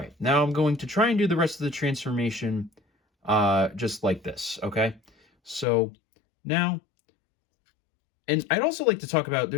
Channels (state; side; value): drops out; right; at 5.7 s